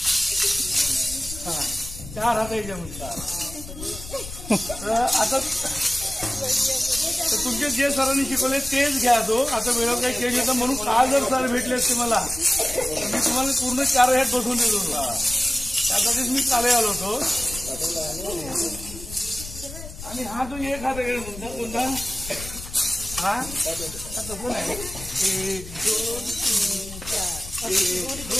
चार हात आता तुमचे जे सरांनी शिकवले तेच घ्या तो आता वेळेवर काही चेंज होतं म्हणून काल जर सर भेटले असते मला तर मी तुम्हाला पूर्ण 4 ह्यात बसून देत होतो त्यासाठीच मी काल आलो होतो आणि हा जो एक हात म्हणता कोणता हा तसं नाही 1 2 3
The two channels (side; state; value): left; noise; rumble, 12 dB below the sound